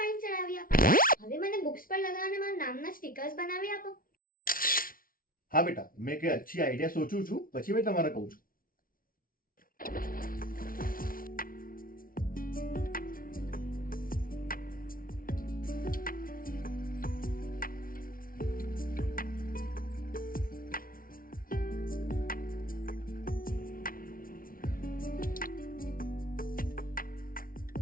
ચડાવી આપો. હવે મને બુક્સ પર લગાવવાના મારા નામના સ્ટીકર્સ બનાવી આપો. હા બેટા, મેં કઈ અચ્છી આઈડિયા સોચું છું, પછી મેં તમારે કહું છું.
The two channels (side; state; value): right; late; 0.42 ms